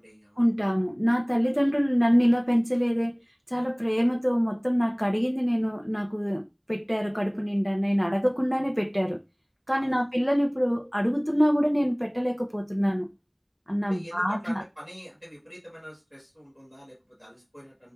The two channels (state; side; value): identical; both; correlation 1.00